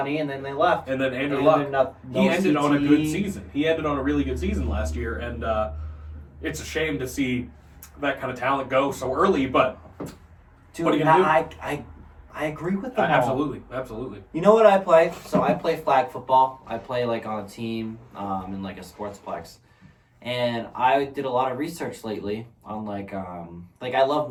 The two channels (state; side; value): identical; both; correlation 1.00